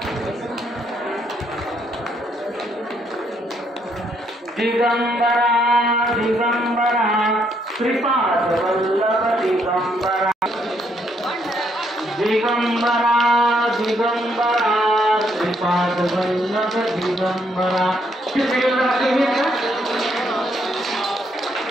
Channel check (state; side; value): normal; both; correlation 0.72